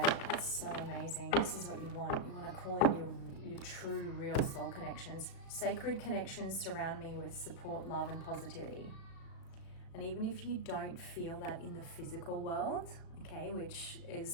that's so amazing. This is what you want. You want to call in your true, real soul connections. Sacred connections surround me with support, love, and positivity. And even if you don't feel that in the physical world, okay, which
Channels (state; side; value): late; right; 36 ms